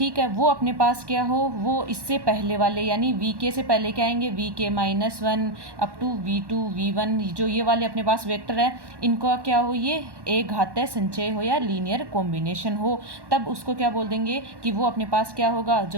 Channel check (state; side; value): late; left; 1.1 ms